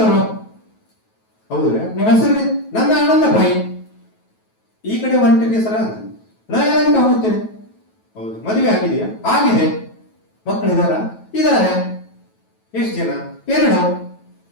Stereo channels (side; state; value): right; late; 9.2 ms